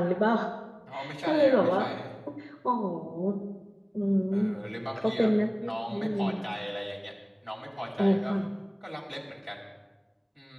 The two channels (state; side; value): identical; both; correlation 1.00